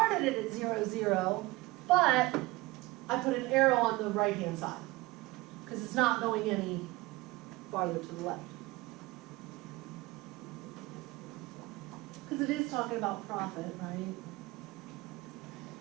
it at 0, 0, but I put an arrow on the right-hand side because it's not going any farther to the left. Because it is talking about profit, right?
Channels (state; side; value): quieter; left; 21.1 dB